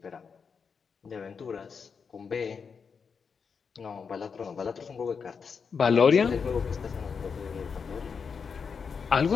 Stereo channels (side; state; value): right; quieter; 5.8 dB